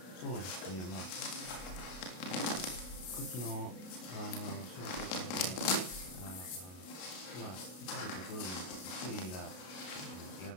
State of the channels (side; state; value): right; late; 33 ms